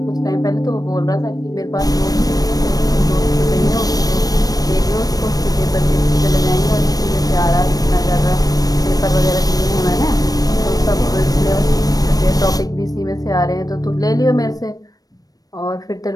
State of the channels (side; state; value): right; late; 0.18 ms